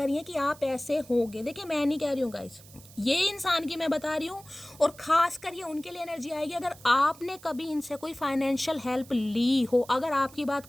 हैं कि आप ऐसे होगे। देखिए मैं नहीं कह रही हूँ गाइस, ये इंसान की मैं बता रही हूँ, और ख़ास कर ये उनके लिए एनर्जी आएगी अगर आपने कभी इनसे कोई फाइनेंशियल हेल्प ली हो। अगर आपकी बात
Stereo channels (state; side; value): noise; right; hiss, 22 dB below the sound